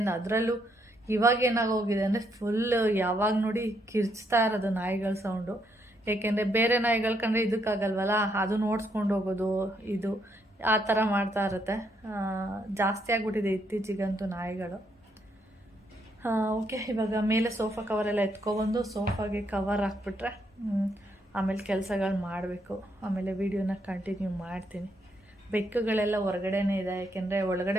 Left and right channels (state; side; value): normal; both; correlation 0.75